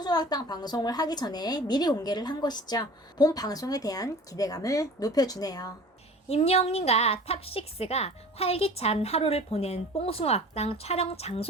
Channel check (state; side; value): normal; both; correlation 0.43